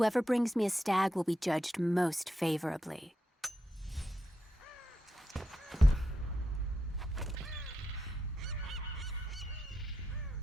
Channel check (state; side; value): normal; both; correlation 0.86